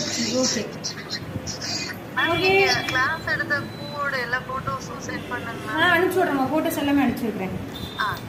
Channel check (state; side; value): identical; both; correlation 1.00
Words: Okay okay. அனுப்பிச்சி விட்றேம்மா, ஃபோட்டோஸ் எல்லாமே அனுப்பிச்சி விட்றேன்.